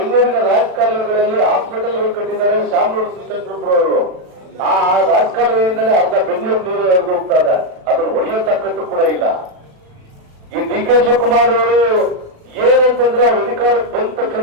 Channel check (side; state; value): left; late; 36 ms